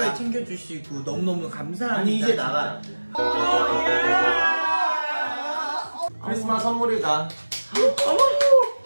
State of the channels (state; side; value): inverted; both; correlation -1.00